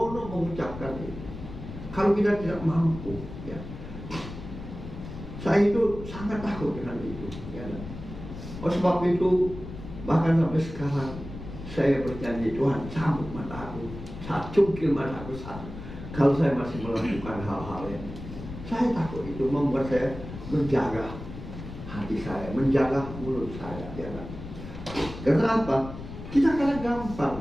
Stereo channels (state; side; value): noise; left; rumble, 11 dB below the sound